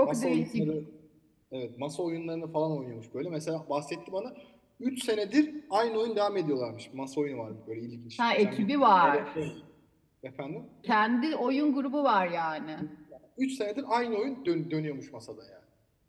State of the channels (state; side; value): identical; both; correlation 1.00